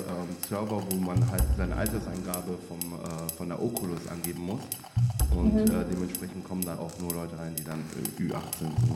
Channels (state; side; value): identical; both; correlation 1.00